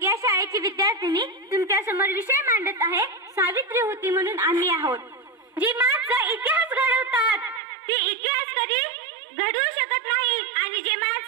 या शाळेची विद्यार्थिनी तुमच्या समोर विषय मांडत आहे सावित्री होती म्हणून आम्ही आहोत. जी माणसं इतिहास घडवतात ती इतिहास कधी घडवू शकत नाही आणि जे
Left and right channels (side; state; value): left; drops out; at 7.6 s